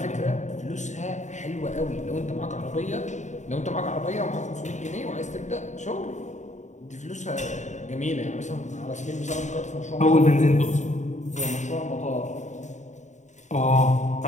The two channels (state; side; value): late; right; 0.34 ms